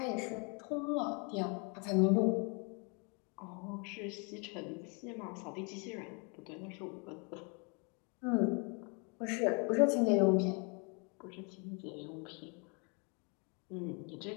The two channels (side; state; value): right; quieter; 34.3 dB